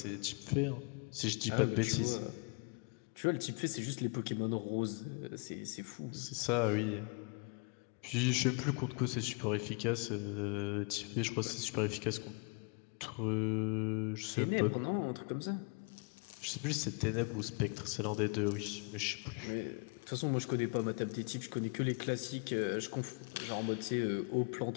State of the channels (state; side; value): quieter; right; 34.5 dB